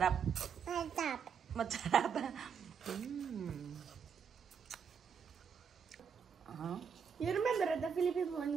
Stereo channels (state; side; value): quieter; left; 6.9 dB